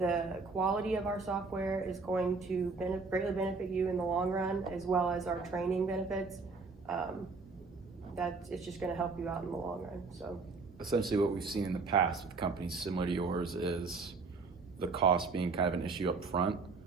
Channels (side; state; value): left; quieter; 4.3 dB